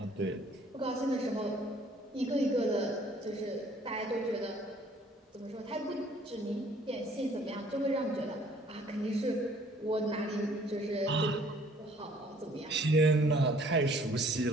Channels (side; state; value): both; normal; correlation 0.58